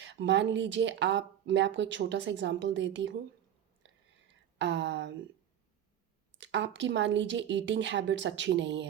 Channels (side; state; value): left; quieter; 10.1 dB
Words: मान लीजिए मैं आपको एक छोटा सा एग्जांपल देती हूँ। आपकी मान लीजिए ईटिंग हैबिट्स अच्छी नहीं